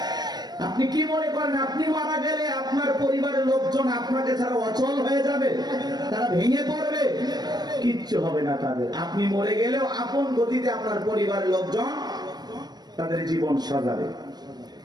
আপনি কি মনে করেন আপনি মারা গেলে আপনার পরিবারের লোকজন আপনাকে ছাড়া অচল হয়ে যাবে, তারা ভেঙে পড়বে? কিচ্ছু হবে না তাদের। আপনি মরে গেলেও আপন গতিতে আপনার পরিবারের লোকজন তাদের জীবন সাজাবে।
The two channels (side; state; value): left; late; 0.20 ms